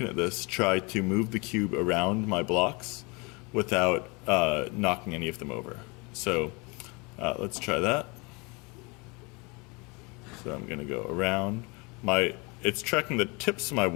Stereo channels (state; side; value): quieter; right; 28.7 dB